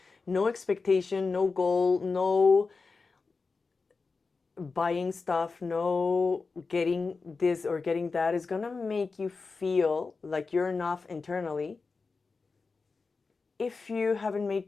no expectation, no goal, no buying stuff, no getting this or getting that is going to make you feel like you're enough internally if you haven't made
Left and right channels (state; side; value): quieter; right; 4.3 dB